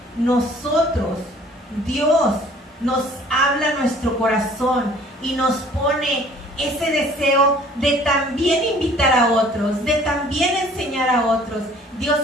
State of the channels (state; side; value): normal; both; correlation 0.53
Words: nosotros, Dios, nos habla a nuestro corazón y nos pone ese deseo de también invitar a otros, de también enseñar a otros. Dios